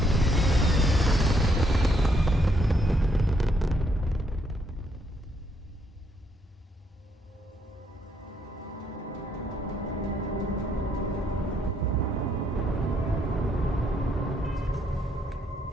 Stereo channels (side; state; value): both; normal; correlation 0.72